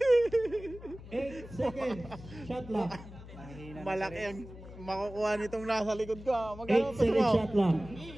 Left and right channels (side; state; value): left; noise; hum, 15 dB below the sound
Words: 8 seconds. Shot lock. Malaki ang makukuha nitong nasa likod ko. 8 seconds shot lock.